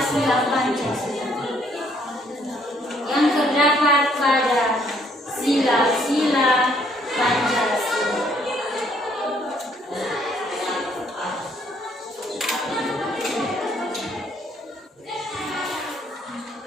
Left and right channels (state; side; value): normal; both; correlation 0.66